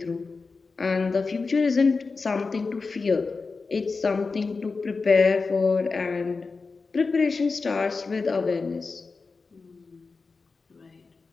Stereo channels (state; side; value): quieter; right; 4.3 dB